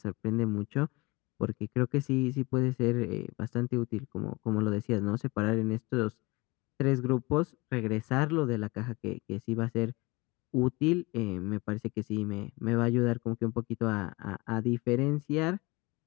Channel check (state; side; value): quieter; right; 24.4 dB